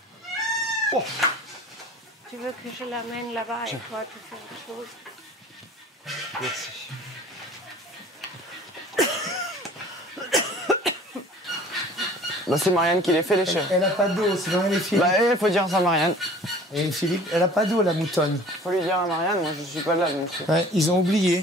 Oh. Tu veux que je l'amène là-bas et toi, tu fais autre chose? Merci. Bah, c'est Marianne qui les fait, les chèvres. Elle a pas d'eau, c'est Marianne et Philippe. Bah, il faut dire ça à Marianne. Et Philippe, elle a pas d'eau, la moutonne. Faut lui dire à Marianne, moi je suis pas là. Donc... Ouais, ils ont oublié.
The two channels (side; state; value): both; normal; correlation 0.47